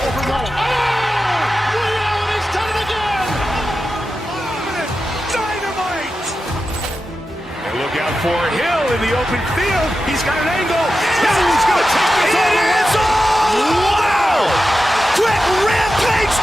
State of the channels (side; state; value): both; normal; correlation 0.92